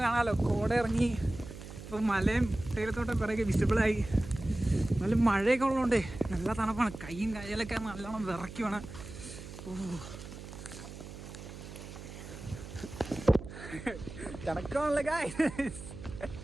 കാണാമല്ലോ, കോട ഇറങ്ങി. ഇപ്പോൾ മലയും തേയിലത്തോട്ടം കുറേയൊക്കെ വിസിബിളായി. നല്ല മഴയൊക്കെ ഉള്ളതുകൊണ്ടേ നല്ല തണുപ്പാണ്. കൈയും കയ്യിലൊക്കെ നല്ലോണം വിറയ്ക്കുവാണ്. കിടക്കാണല്ലേ ഗായ്സ്.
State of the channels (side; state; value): right; noise; hum, 13 dB below the sound